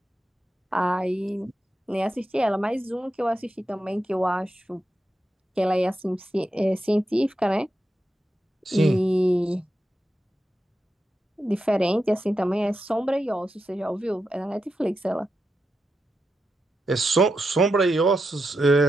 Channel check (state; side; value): normal; both; correlation 0.87